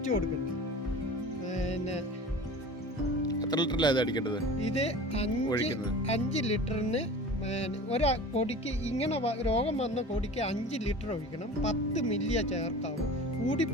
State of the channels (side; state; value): both; normal; correlation 0.38